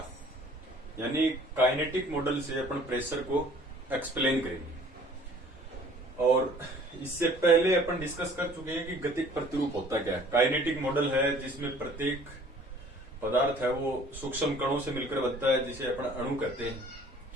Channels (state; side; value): normal; both; correlation 0.53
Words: यानी काइनेटिक मॉडल से अपन प्रेशर को एक्सप्लेन करेंगे। और इससे पहले अपन डिस्कस कर चुके हैं कि गतिक प्रतिरूप होता क्या है। काइनेटिक मॉडल है जिसमें प्रत्येक पदार्थ है वो सूक्ष्म कणों से मिलकर बनता है, जिसे अपन अणु कहते हैं।